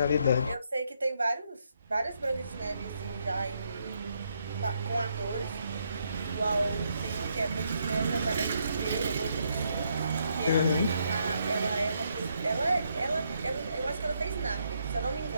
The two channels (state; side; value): inverted; both; correlation -0.76